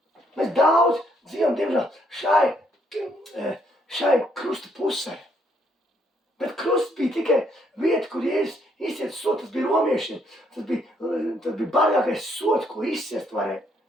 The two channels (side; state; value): both; normal; correlation 0.71